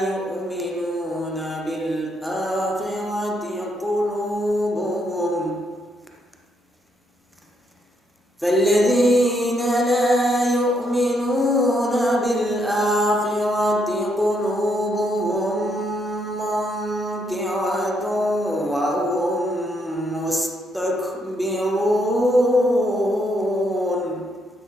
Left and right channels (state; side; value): normal; both; correlation 0.75